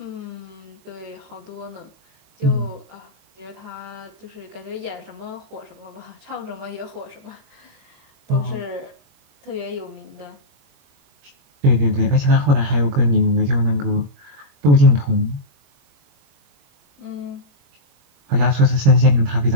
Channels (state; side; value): late; left; 21 ms